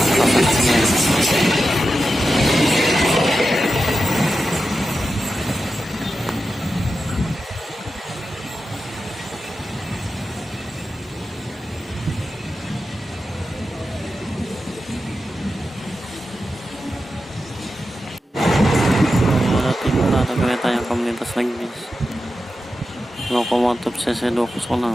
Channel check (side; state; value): both; normal; correlation 0.91